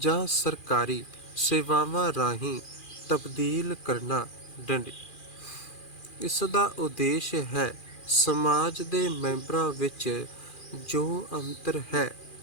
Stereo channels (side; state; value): right; late; 2.4 ms